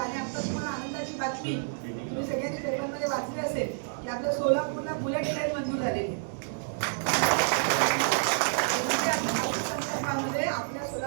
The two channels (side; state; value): left; silent; digital silence